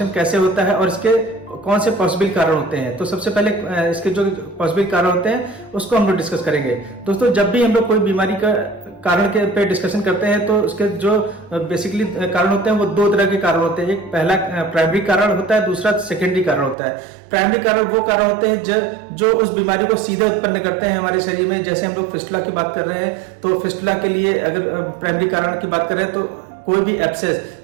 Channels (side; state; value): left; drops out; at 16.8 s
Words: कैसे होता है और इसके कौन से पॉसिबल कारण होते हैं। तो सबसे पहले इसके जो पॉसिबल कारण होते हैं उसको हम लोग डिस्कस करेंगे। दोस्तों, जब भी हम लोग कोई बीमारी का कारण के पे डिस्कशन करते हैं तो उसके जो बेसिकली कारण होते हैं वो दो तरह के कारण होते हैं। एक पहला प्राइमरी कारण होता है, दूसरा सेकेंडरी कारण होता है। प्राइमरी कारण वो कारण होते हैं जो उस बीमारी को सीधे उत्पन्न करते हैं हमारे शरीर में। जैसे हम लोग फिस्टुला की बात कर रहे हैं तो फिस्टुला के लिए अगर प्राइमरी कारण की बात करें तो कोई भी एब्सेस,